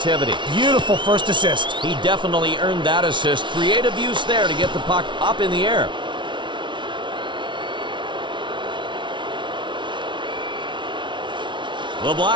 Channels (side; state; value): left; late; 0.24 ms